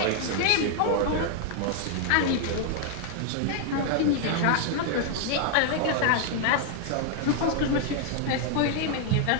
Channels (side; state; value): both; different; correlation 0.00